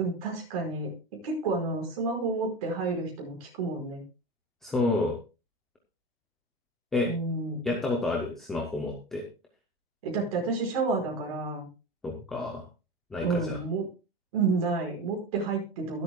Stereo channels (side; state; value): both; normal; correlation 0.28